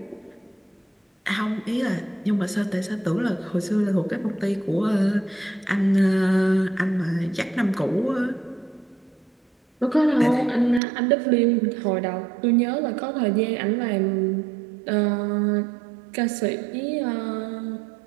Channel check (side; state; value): left; drops out; at 10.8 s